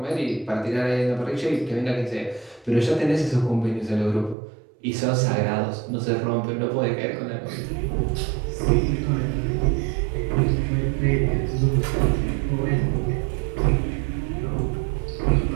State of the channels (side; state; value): left; drops out; at 4.4 s